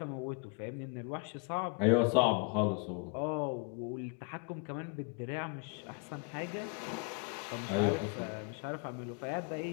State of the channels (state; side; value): quieter; right; 33.9 dB